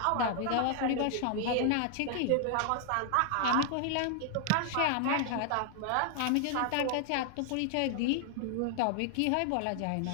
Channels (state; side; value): different; both; correlation 0.00